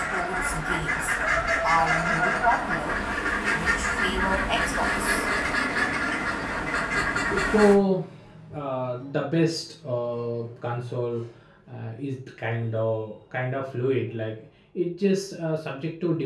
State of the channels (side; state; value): both; identical; correlation 1.00